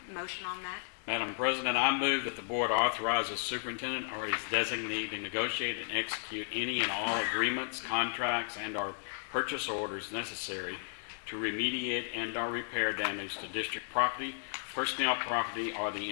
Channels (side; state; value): right; silent; digital silence